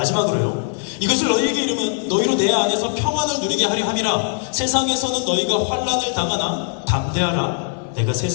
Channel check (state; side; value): silent; right; digital silence